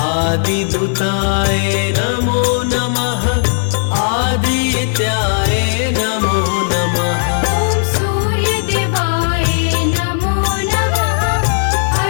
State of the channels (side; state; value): right; silent; digital silence